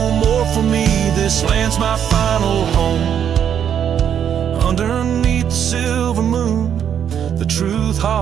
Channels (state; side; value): quieter; left; 8.7 dB